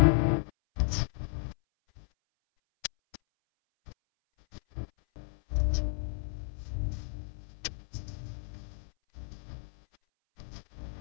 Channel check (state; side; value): silent; right; 56 dB below the other